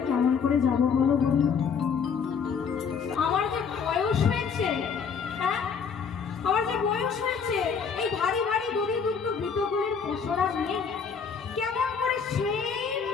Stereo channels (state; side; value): quieter; right; 6.2 dB